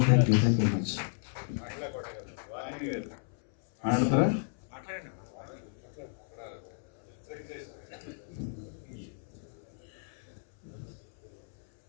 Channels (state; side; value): silent; right; 55 dB below the other